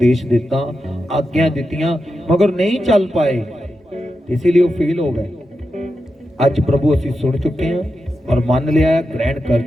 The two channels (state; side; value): normal; both; correlation 0.89